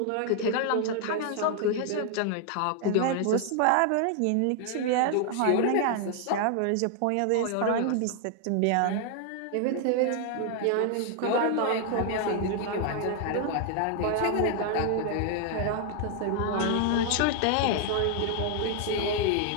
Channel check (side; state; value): both; different; correlation 0.00